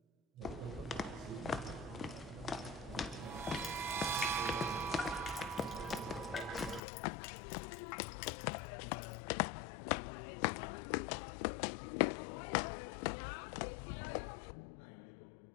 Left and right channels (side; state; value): right; drops out; at 6.8 s